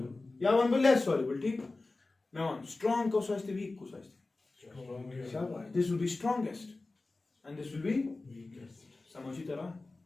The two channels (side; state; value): right; quieter; 3.3 dB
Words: या वन बो लेस सॉल्युबल, ठीक। मैं वन स्ट्रांग को सोचते वीक को सोचते, शाबाश, this will be strongest and this will be समझी तरह